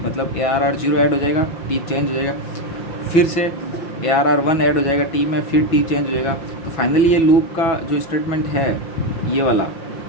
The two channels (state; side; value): late; right; 6.1 ms